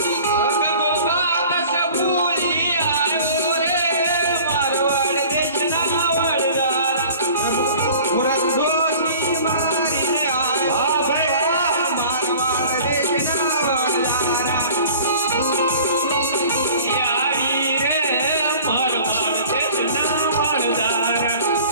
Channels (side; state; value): both; inverted; correlation -0.45